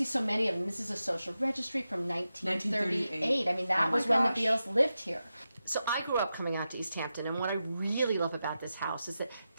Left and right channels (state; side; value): inverted; both; correlation -0.91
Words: so many of them. This is a social registry from 1938. I mean, that was when the Beales lived here. So I grew up coming out to East Hampton, and what I really love about this house is that